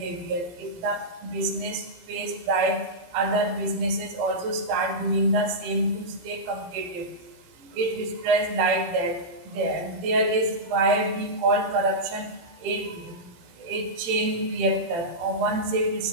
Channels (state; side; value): late; left; 18 ms